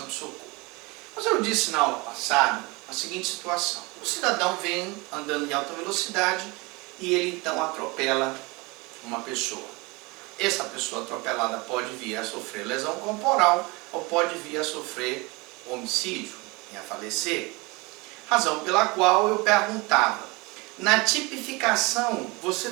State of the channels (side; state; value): left; quieter; 25.5 dB